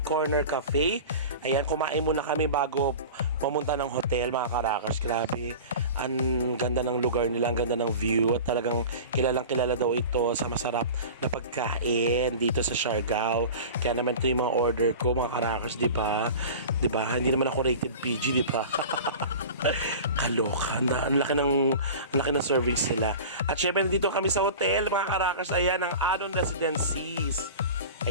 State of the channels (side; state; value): both; inverted; correlation -0.35